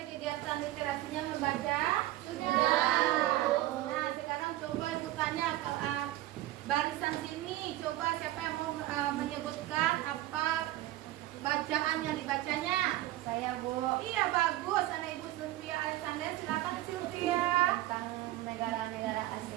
kegiatan literasinya membaca? Sudah. Nah, sekarang coba Ibu tanya barisan sini, coba siapa yang mau menyebutkan apa bacaan yang dibacanya? Saya, Bu. Iya, bagus. Anak Ibu Sylvia Alexander, silakan Sylvia. Tentang negara-negara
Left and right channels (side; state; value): left; quieter; 15.7 dB